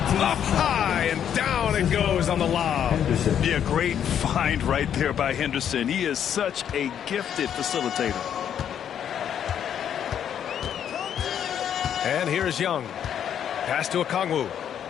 Up high and down it goes on the lob. Yeah, great find right there by Henderson. He is such a gifted facilitator. And here's Young. Pass to Okongwu.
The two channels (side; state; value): right; quieter; 9.2 dB